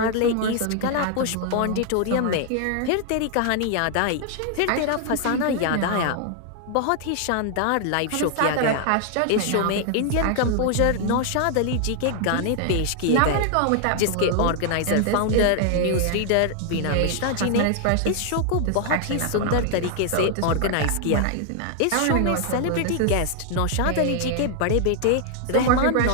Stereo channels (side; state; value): both; different; correlation 0.00